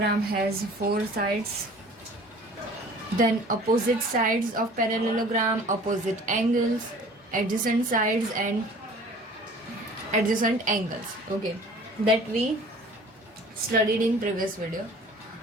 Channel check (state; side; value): normal; both; correlation 0.47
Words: has four sides, then opposite sides of parallelogram, opposite angles, adjacent sides and adjacent angles. Okay, that we studied in previous video.